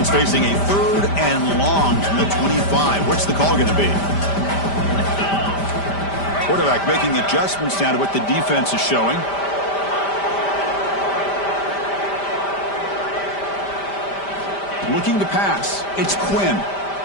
facing a third and long from the 25. What's the call going to be? Quarterback making adjustments down to what the defense is showing. Looking to pass. It's Quinn.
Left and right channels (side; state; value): right; late; 5.1 ms